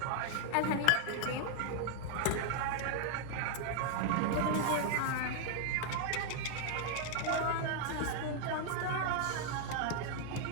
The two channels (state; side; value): different; both; correlation 0.00